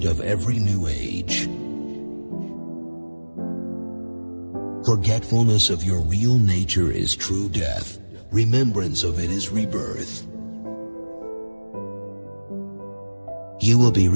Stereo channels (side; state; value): both; inverted; correlation -1.00